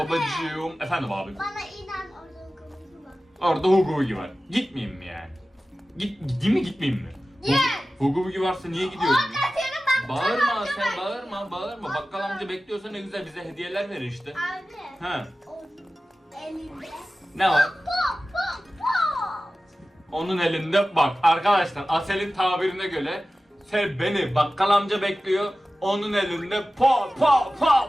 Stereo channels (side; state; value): both; normal; correlation 0.95